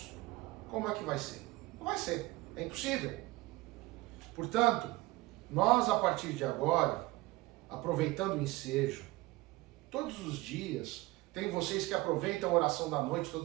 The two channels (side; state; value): left; quieter; 20.2 dB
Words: como é que vai ser? Não vai ser. É impossível. Portanto, nós a partir de agora, aproveitando o ensejo, todos os dias, tem vocês que aproveitam a oração da noite,